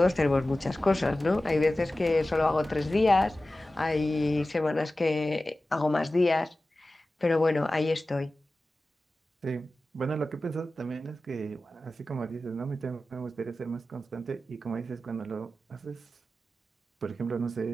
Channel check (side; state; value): both; normal; correlation 0.95